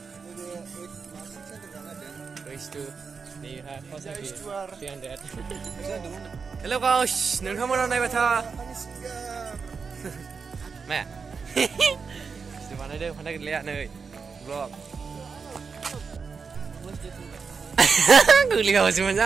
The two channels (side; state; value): left; quieter; 5.4 dB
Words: Hello guys. नोंथांमोना नायबाय था मा Situ बानायदों फान्दा गैलाया नै vlog गोग्लैगासिनोमोन